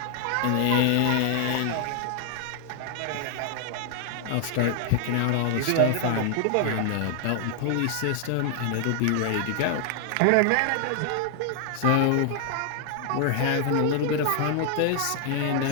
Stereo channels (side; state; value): both; different; correlation 0.00